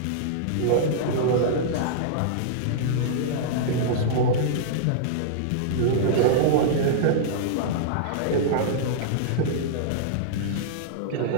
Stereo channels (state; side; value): different; both; correlation -0.02